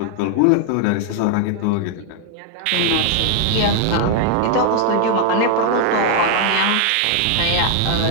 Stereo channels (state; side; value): different; both; correlation 0.00